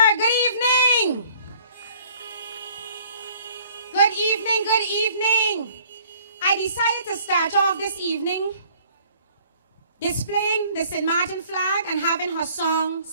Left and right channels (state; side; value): inverted; both; correlation -0.55